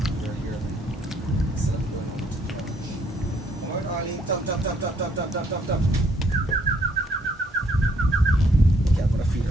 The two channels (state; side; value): normal; both; correlation 0.68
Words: her here. Instead of going on to the couch. Alright, Arlene, tap, tap, tap, tap, tap, tap, tap, tap, tap. Okay, I'm gonna feed